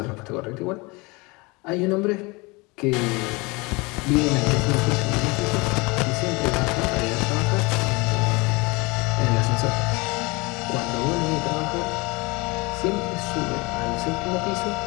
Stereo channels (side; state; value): right; quieter; 26.0 dB